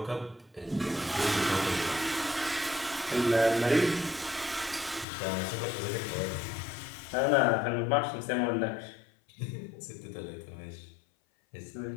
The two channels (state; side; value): drops out; right; at 5.1 s